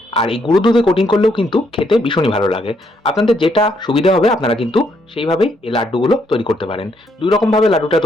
আর এই গুঁড়ো দুধে কোটিং করলেও কিন্তু খেতে ভীষণই ভালো লাগে। আপনাদের যেটা সুবিধা হবে আপনারা কিন্তু সেইভাবেই এই লাড্ডুগুলো তৈরি করতে পারেন। 2 রকমভাবে লাড্ডুটা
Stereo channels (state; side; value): normal; both; correlation 0.73